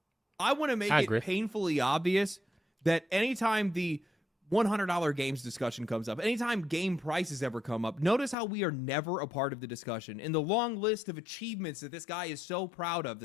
I want to make it painfully obvious that anytime the $100 games discussion comes up, anytime game prices ever come up, notice how we are never a part of the discussion. In the long list of achievements that this guy is so proud of, the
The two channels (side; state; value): right; drops out; at 8.3 s